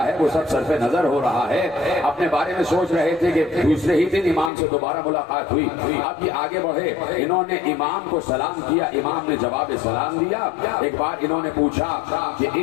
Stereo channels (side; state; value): right; drops out; at 4.5 s